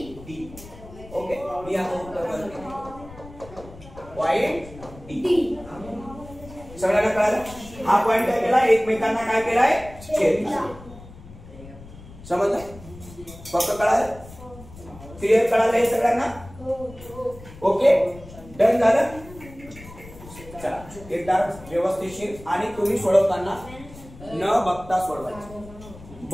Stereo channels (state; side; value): noise; left; rumble, 18 dB below the sound